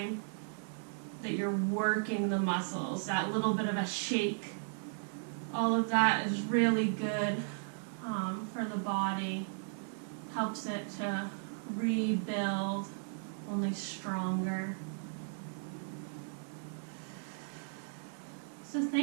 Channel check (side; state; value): left; silent; digital silence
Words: that you're working the muscles, that little bit of a shake, all of that is really good for the body. Helps it to rebuild only stronger. So